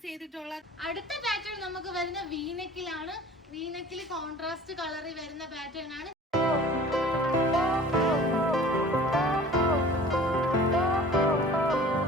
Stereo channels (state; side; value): normal; both; correlation 0.45